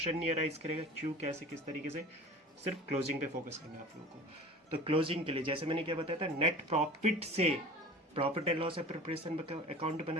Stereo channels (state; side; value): normal; both; correlation 0.39